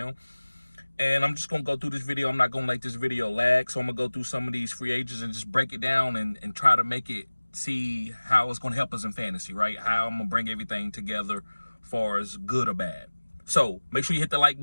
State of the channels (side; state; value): both; inverted; correlation -1.00